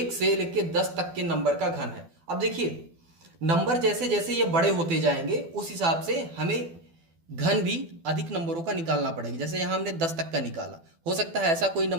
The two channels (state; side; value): late; left; 12 ms